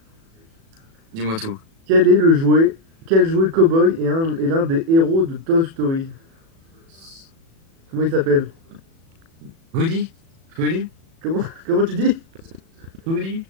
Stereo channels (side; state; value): left; late; 36 ms